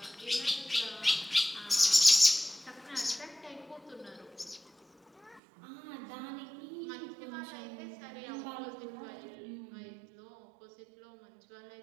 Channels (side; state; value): left; drops out; at 5.4 s